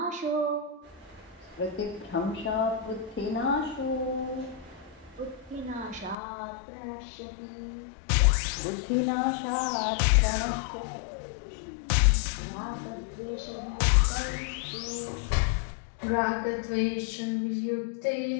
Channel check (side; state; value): right; drops out; at 6.2 s